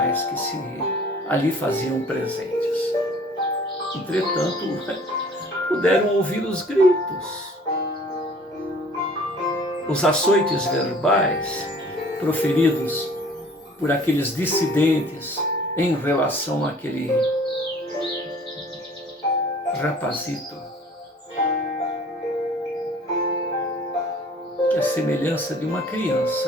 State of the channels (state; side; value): normal; both; correlation 0.51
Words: que se ali faziam presentes. Entretanto, puderam ouvir os gritos, os açoites verbais proferidos por aqueles dissidentes em relação àquele rapazito, que a semelhança de uma